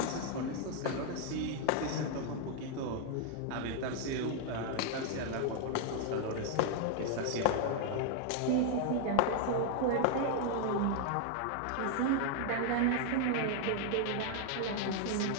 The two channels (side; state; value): both; different; correlation 0.00